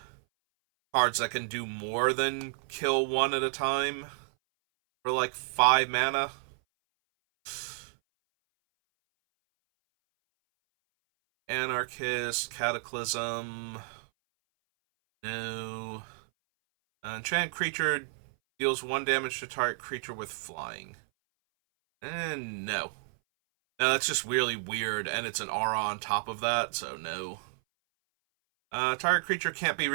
cards that can do more than kill one at a time for, like, 5 mana. Anarchist, Cataclysm. No. Enchanted creature deals 1 damage to target creature with flying. And no. No, that's just really weird, and it's an aura on top of that, so no. Target creature can't be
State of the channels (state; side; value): silent; left; 57 dB below the other